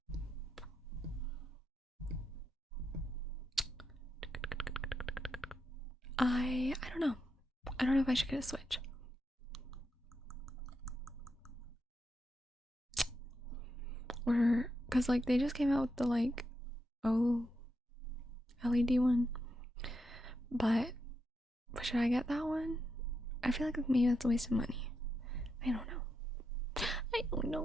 I don't know. I don't know if I should get a Switch. Or cuz like they just came out with the like LED one. But should I get that one? I feel like maybe that's a waste of money. I don't know.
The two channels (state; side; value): normal; both; correlation 0.84